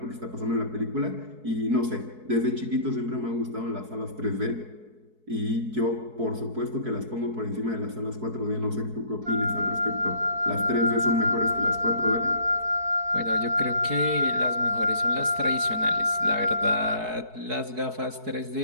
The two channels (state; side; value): late; left; 4.6 ms